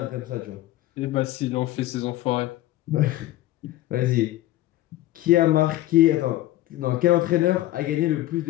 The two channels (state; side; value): quieter; right; 15.7 dB